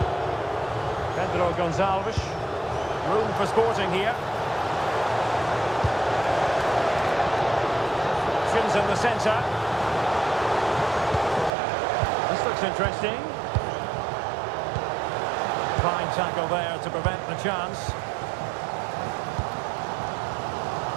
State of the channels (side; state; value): left; drops out; at 11.6 s